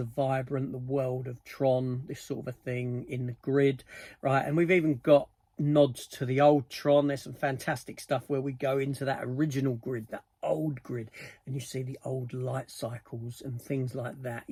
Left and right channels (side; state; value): both; identical; correlation 1.00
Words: vibrant, the world of Tron, this sort of a thing in the grid, right? And we've even got nods to the old Tron. There's some fantastic stuff where we go into that original grid, that old grid, and you see the old light cycles and things like that.